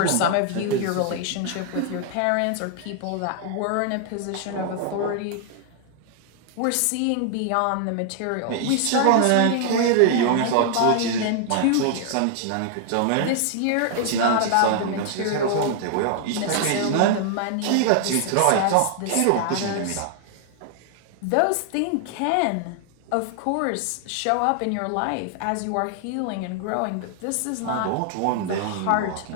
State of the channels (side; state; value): both; different; correlation 0.00